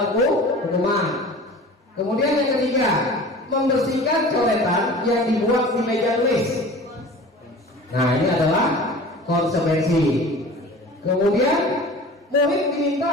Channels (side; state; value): both; normal; correlation 0.40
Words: hukuman. Kemudian yang ketiga, membersihkan coretan yang dibuat di meja tulis. Nah ini adalah konsekuensi. Kemudian murid